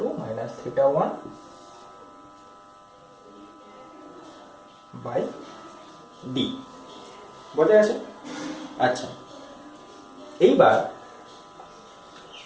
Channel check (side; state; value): both; identical; correlation 1.00